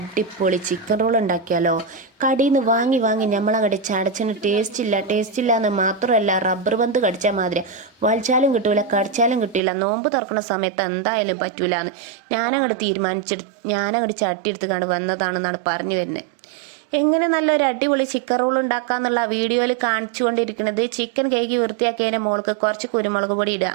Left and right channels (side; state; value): left; drops out; at 9.6 s